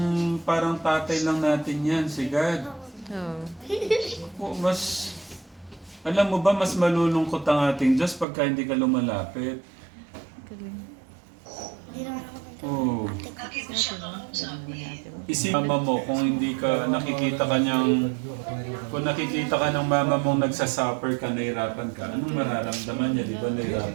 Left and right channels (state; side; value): drops out; left; at 8.2 s